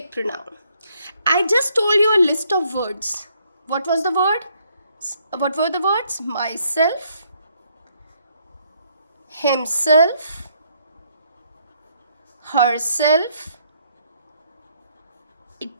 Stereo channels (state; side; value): inverted; both; correlation -0.70